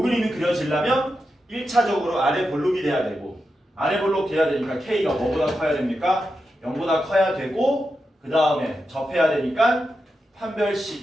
그림이 그려지려면 1차적으로 아래 볼록이 돼야 되고 아래 볼록 돼야 되니까 K가 뭐보다 커야 됩니까? 0보다 커야 되고 그 다음에 접해야 되니까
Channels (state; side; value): normal; both; correlation 0.88